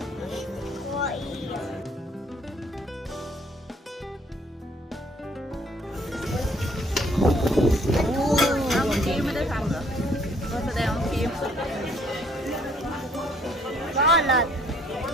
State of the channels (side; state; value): both; normal; correlation 0.62